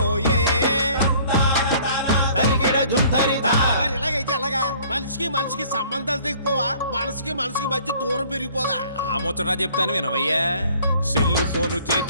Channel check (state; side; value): inverted; both; correlation -0.55